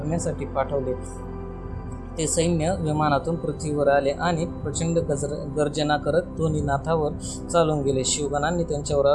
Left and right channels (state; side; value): identical; both; correlation 1.00